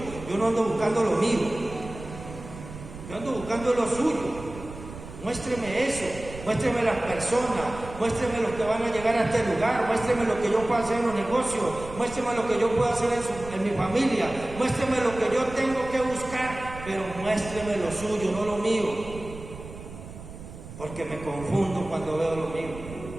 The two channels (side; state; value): right; noise; rumble, 13 dB below the sound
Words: yo no ando buscando lo mío, yo ando buscando lo suyo. Muéstreme eso, muéstreme las personas, muéstreme los que van a llegar a este lugar, muéstreme lo que yo puedo hacer en los negocios, muéstreme lo que yo puedo hacer en mi familia, muéstreme lo que yo tengo que buscar, pero muéstreme lo suyo, no lo mío. Porque me confundo cuando veo lo mío.